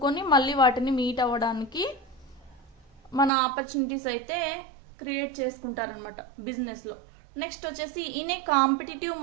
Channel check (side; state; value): left; drops out; at 3.3 s